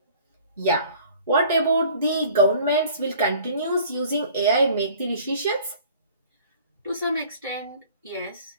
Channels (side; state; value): both; inverted; correlation -0.50